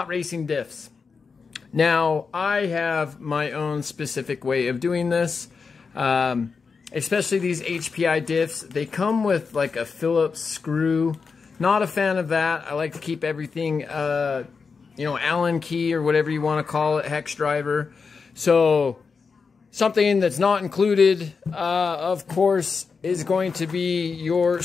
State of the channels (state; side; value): quieter; right; 5.1 dB